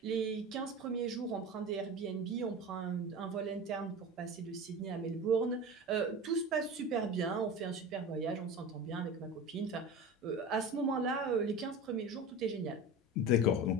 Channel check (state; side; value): normal; both; correlation 0.30